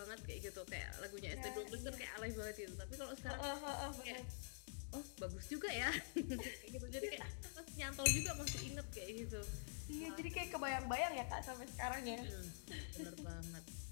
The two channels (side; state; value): right; silent; digital silence